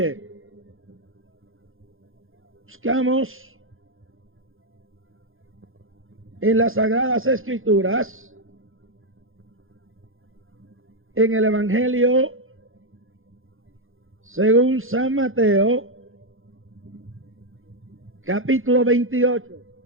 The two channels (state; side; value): late; left; 0.60 ms